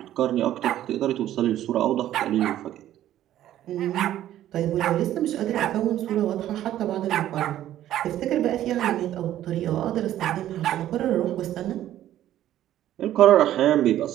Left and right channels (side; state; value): left; quieter; 12.6 dB